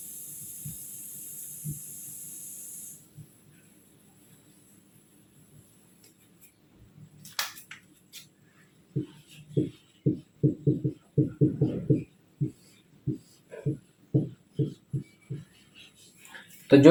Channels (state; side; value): identical; both; correlation 1.00